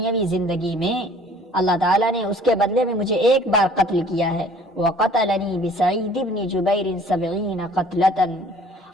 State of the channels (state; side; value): normal; both; correlation 0.53